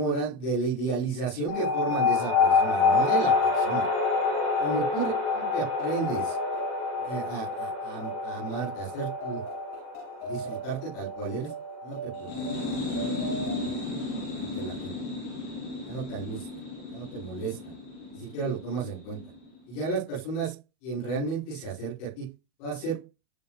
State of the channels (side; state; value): right; late; 40 ms